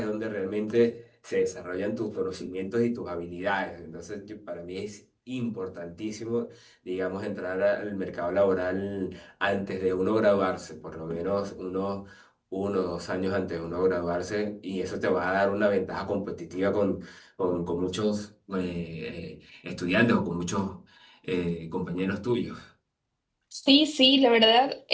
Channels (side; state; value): both; identical; correlation 1.00